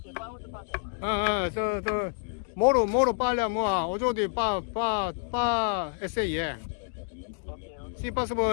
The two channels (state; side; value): silent; right; digital silence